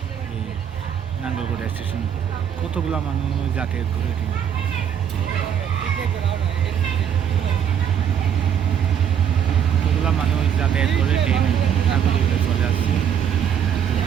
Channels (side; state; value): left; quieter; 8.6 dB